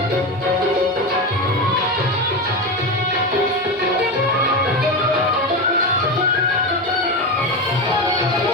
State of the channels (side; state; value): both; normal; correlation 0.18